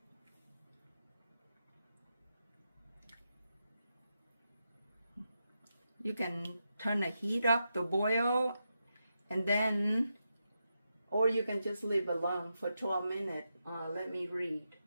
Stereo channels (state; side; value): inverted; both; correlation -0.86